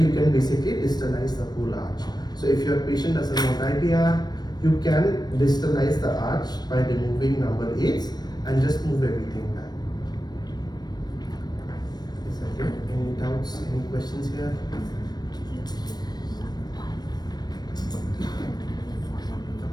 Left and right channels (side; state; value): right; late; 0.19 ms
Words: can basically distalize the whole arch. So if your patient doesn't want IPR, you can distalize the arch by removing number 8s and just move everything back. Is that it? Any doubts, any questions here?